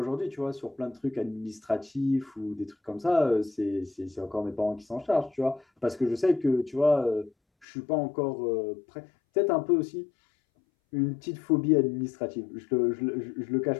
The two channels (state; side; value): drops out; right; at 7.7 s